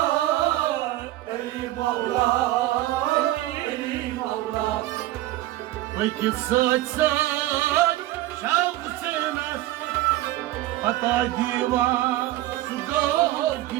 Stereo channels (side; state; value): left; quieter; 16.1 dB